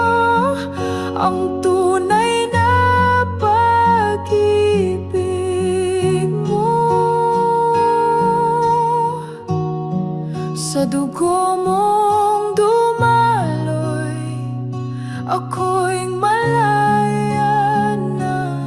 ang tunay na pag-ibig mo. Sa dugo mong dumaloy, ako'y malaya na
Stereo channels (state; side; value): identical; both; correlation 1.00